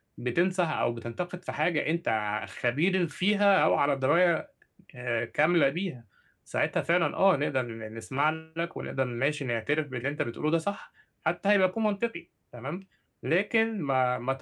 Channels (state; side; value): identical; both; correlation 1.00